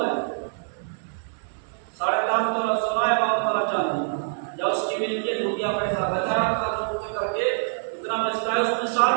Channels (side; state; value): left; silent; 58 dB below the other